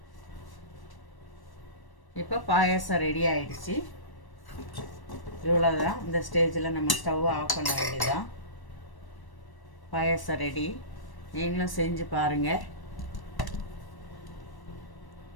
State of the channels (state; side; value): late; right; 1.1 ms